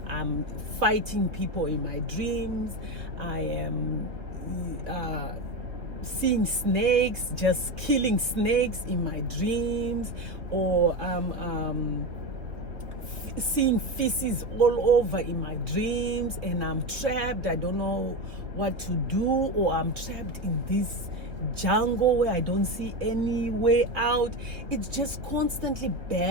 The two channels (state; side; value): late; left; 3.3 ms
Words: I'm fighting people in my dreams. I am seeing snakes, just killing snakes in my dreams, or seeing feces all over in my dreams, and I'm trapped. I don't know what to do, or I'm trapped in this jungle where I don't see any way out. It's just constantly